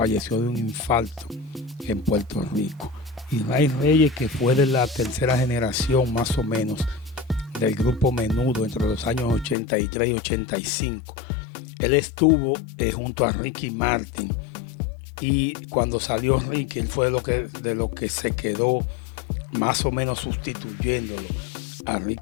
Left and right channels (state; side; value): drops out; right; at 9.6 s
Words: de un infarto en Puerto Rico. Y Ray Reyes, que fue de la tercera generación más o menos del grupo Menudo entre los años 83 y 85, él estuvo junto a Ricky Martin, y cuando salió Ricky, él fue de lo que se quedó más o menos sustituyéndolo a